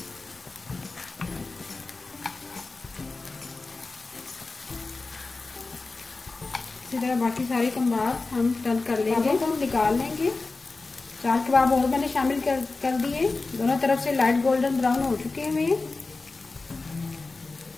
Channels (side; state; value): right; quieter; 3.6 dB